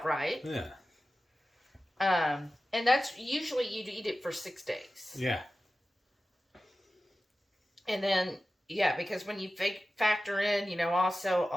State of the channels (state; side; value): normal; both; correlation 0.95